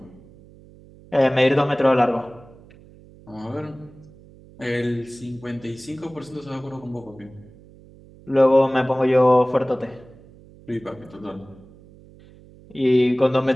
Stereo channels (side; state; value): right; noise; hum, 23 dB below the sound